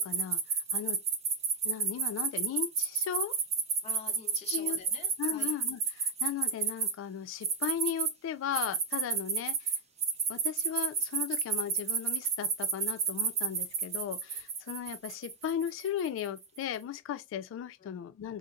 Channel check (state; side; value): normal; both; correlation 0.02